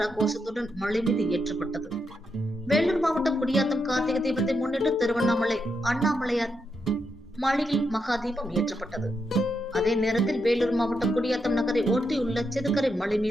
கோஷத்துடன் மலை மீது ஏற்றப்பட்டது. வேலூர் மாவட்டம் குடியாத்தம் கார்த்திகை தீபத்தை முன்னிட்டு திருவண்ணாமலை அண்ணாமலையார் மலையில் மகா தீபம் ஏற்றப்பட்டது. அதே நேரத்தில் வேலூர் மாவட்டம் குடியாத்தம் நகரை ஒட்டியுள்ள செதுக்கரை மலை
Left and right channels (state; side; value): normal; both; correlation 0.82